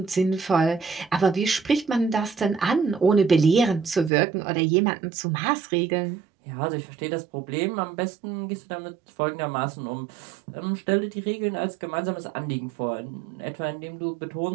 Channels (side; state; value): left; drops out; at 4.1 s